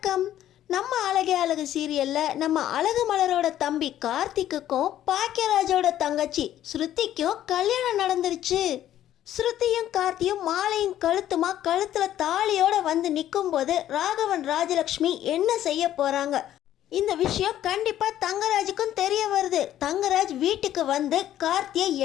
நம்ம அழகே அழகு சீரியல்ல நம்ம அழகு மலரோட தம்பி கார்த்திக்குக்கும் பாக்கியராஜோட தங்கச்சி ஸ்ருதிக்கும் கல்யாணம் நடந்துருச்சு. ஸ்ருதியும் கார்த்தியும் மாலையும் கழுத்துமா கழுத்துல தாலியோட வந்து நிற்கும் போது ராகவன் ராஜலக்ஷ்மி என்ன செய்ய போறாங்க? இந்த விஷயம் கண்டிப்பா தங்கராஜுக்கும் தெரிய வருது. தங்கராஜ் வீட்டுக்கு வந்து கார்த்தியை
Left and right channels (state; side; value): quieter; right; 12.1 dB